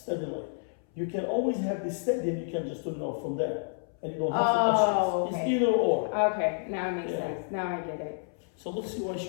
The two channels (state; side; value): silent; right; 58 dB below the other